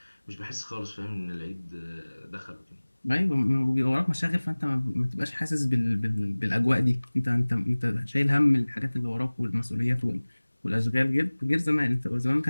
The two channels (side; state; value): both; inverted; correlation -1.00